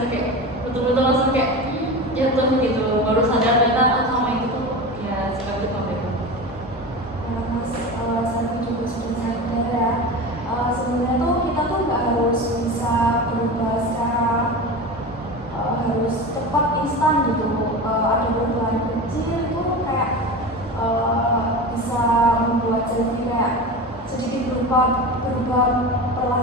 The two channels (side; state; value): both; normal; correlation 0.28